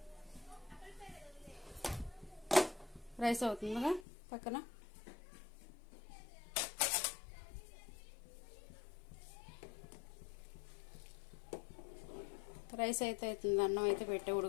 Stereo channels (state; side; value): drops out; right; at 4.0 s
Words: రైస్ అవుతుందిగా పక్కన. రైస్ అయితే అవుతుంది, అన్నం అయితే పెట్టి